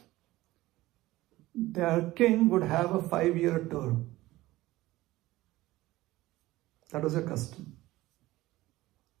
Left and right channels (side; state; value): left; quieter; 17.6 dB